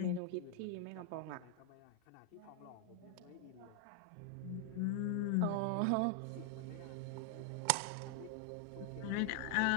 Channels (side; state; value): both; different; correlation 0.00